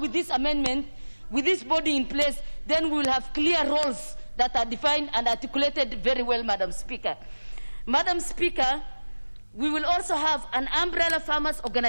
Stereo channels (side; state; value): both; inverted; correlation -1.00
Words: this amendment, with this body in place, then we will have clear roles that are defined and articulated very well, Madam Speaker. Madam Speaker, we will also have an umbrella farmers